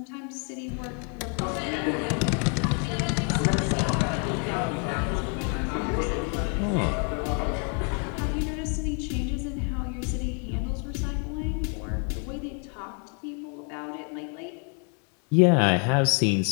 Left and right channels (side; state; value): right; quieter; 39.4 dB